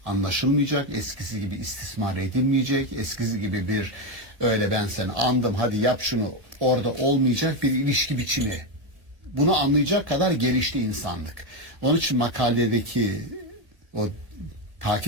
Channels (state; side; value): late; left; 1.8 ms